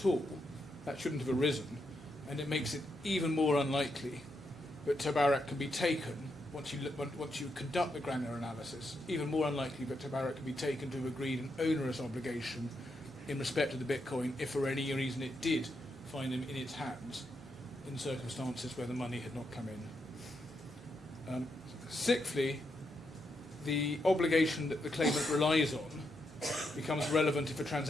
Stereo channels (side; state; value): both; normal; correlation 0.81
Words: all. That shouldn't have arisen, and it makes it even more unlikely that TABARAK can be taken once you conduct the granular analysis. Even more unlikely that TABARAK can be taken to have agreed an onerous obligation in respect of the Bitcoin if for any reason it did find them in its hands in circumstances where the money had not come in. Sixthly, the obligation that the claimant relies on becomes relevant if a